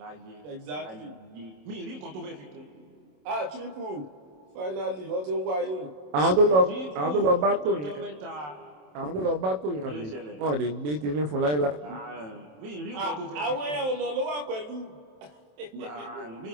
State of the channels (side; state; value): left; late; 27 ms